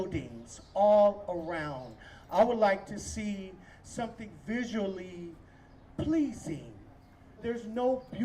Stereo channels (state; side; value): identical; both; correlation 1.00